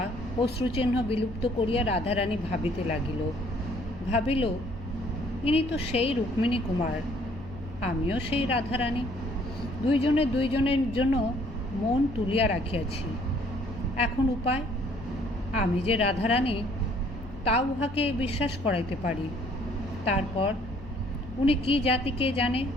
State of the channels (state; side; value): noise; left; hum, 17 dB below the sound